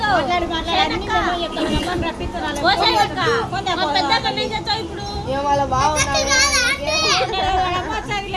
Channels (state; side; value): identical; both; correlation 1.00